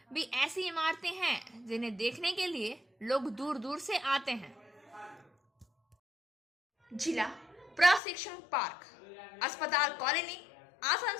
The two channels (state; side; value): drops out; right; at 8.0 s